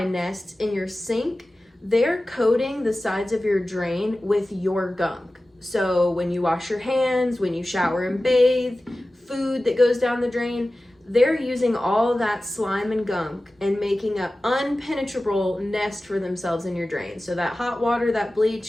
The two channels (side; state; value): both; normal; correlation 0.96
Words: nests in your sink, they're coating the sides of your drain with your gunk. So when you wash your hands, when you shower and bathe, food that goes down the drain, they're using all that slime and gunk and making an unpenetrable nest for themselves in your drain. So that hot water, that